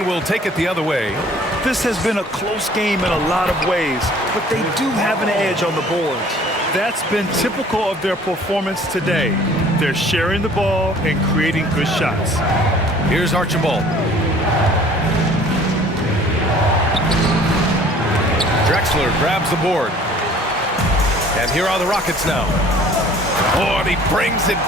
will take it the other way. This has been a close game in a lot of ways, but they do have an edge on the boards. That's been typical of their performance today. They're sharing the ball and creating good shots. Here's Archibald. Drexler grabs the board. And here are the Rockets now. Oh, and he brings it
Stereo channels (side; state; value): both; normal; correlation 0.52